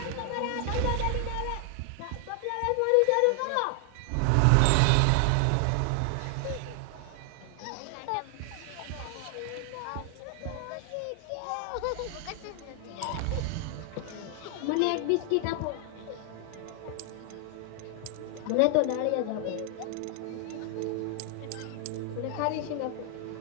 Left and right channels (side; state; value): both; different; correlation 0.00